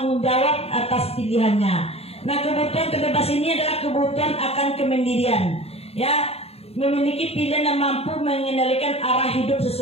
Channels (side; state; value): right; late; 0.29 ms